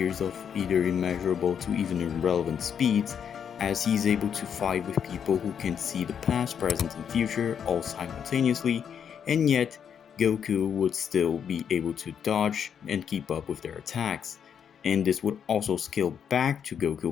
of either immeasurable to even irrelevant speeds, as he is able to fight with people who can see the past, present, and future all simultaneously, and yet Goku would still be able to dodge and keep up with their attacks. and this would also scale back to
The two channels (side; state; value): right; quieter; 7.9 dB